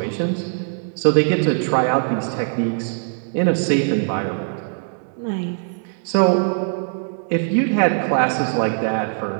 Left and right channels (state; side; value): silent; left; digital silence